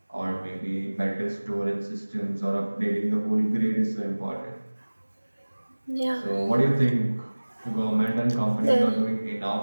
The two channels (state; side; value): inverted; both; correlation -1.00